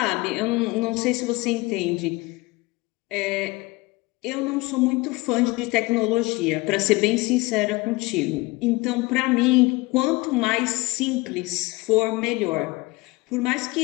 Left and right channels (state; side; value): quieter; right; 22.6 dB